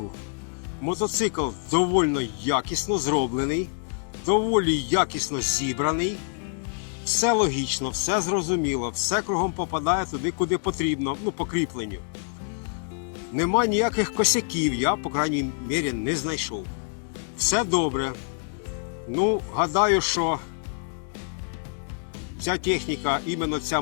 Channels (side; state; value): right; silent; digital silence